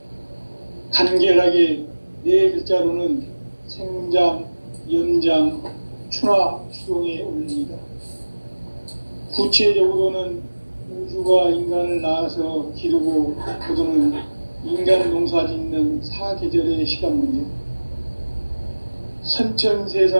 간결하게 네 글자로는 생장, 연장, 추나 추동의 원리이다. 구체적으로는 우주가 인간을 낳아서 기르고 거두는 인간 농사 짓는 사계절의 시간 문제. 선천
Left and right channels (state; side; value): inverted; both; correlation -1.00